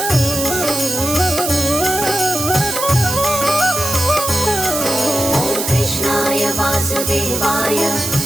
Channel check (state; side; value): noise; right; hiss, 3 dB below the sound